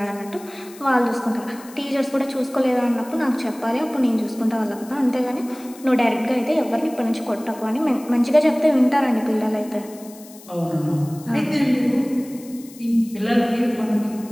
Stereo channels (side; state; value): left; noise; hiss, 21 dB below the sound